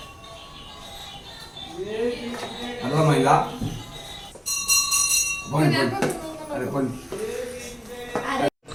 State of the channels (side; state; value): both; identical; correlation 1.00